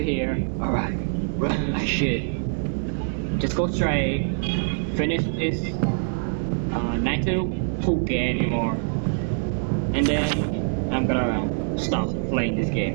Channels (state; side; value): silent; left; digital silence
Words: here. Alright, run like shit. Just go straight. Finish this. Not to poke anymore. And then I'm gonna stop playing this